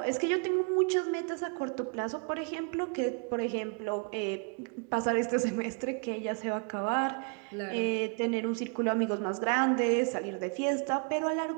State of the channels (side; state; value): left; quieter; 36.7 dB